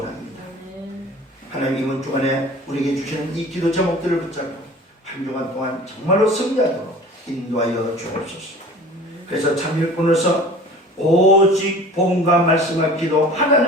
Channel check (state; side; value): normal; both; correlation 0.43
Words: 하나님 이번 주간에 우리에게 주시는 이 기도 제목들을 붙잡고 한 주간 동안 정말로 승리하도록 인도하여 주옵소서. 그래서 참 일꾼으로서 오직 복음과 말씀과 기도